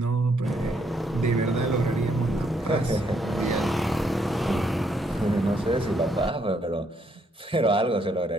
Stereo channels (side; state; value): both; normal; correlation 0.72